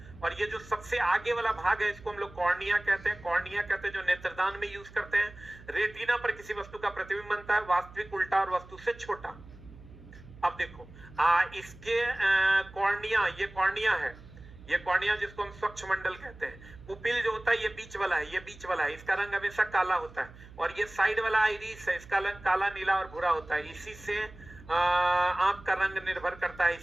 और ये जो सबसे आगे वाला भाग है इसको हम लोग कॉर्निया कहते हैं, कॉर्निया कहते हैं जो नेत्रदान में यूज करते हैं। रेटिना पर किसी वस्तु का प्रतिबिंब बनता है, वास्तविक उल्टा और वस्तु से छोटा। अब देखो इसके कॉर्निया, ये कॉर्निया है, ये कॉर्निया जिसको हम स्वच्छ मंडल कहते हैं। पुपिल जो होता है ये बीच वाला है, ये बीच वाला है, इसका रंग हमेशा काला होता है। और ये साइड वाला आइरिस है, इसका रंग काला, नीला और भूरा होता है। इसी से आंख का रंग निर्भर करता है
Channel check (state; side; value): noise; right; hum, 19 dB below the sound